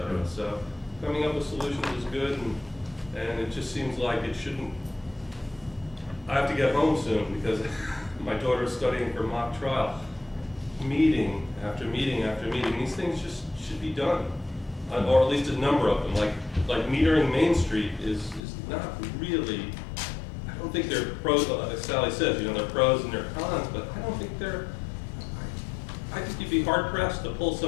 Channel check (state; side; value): drops out; right; at 18.4 s